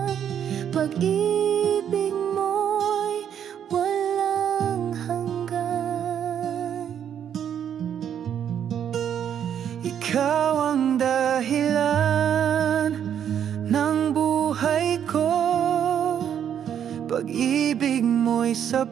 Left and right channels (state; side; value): quieter; left; 9.1 dB